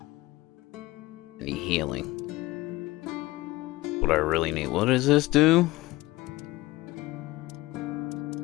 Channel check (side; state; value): right; quieter; 19.0 dB